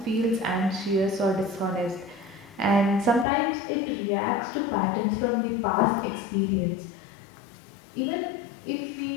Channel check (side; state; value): right; drops out; at 3.2 s